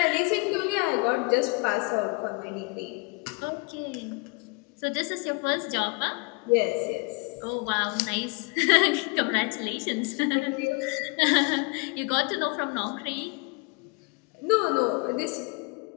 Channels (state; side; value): quieter; right; 31.0 dB